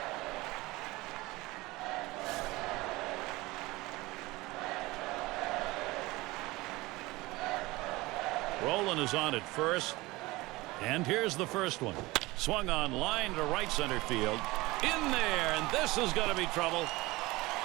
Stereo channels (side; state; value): left; quieter; 21.0 dB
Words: Rowland is on at first. And here's the first one. Swung on line to right center field. In there, and this is going to be trouble.